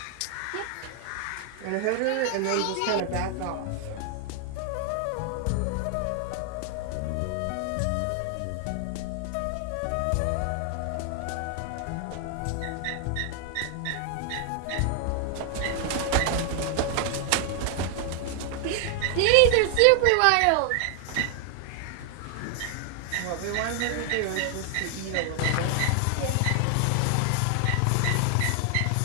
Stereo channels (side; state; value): both; different; correlation 0.00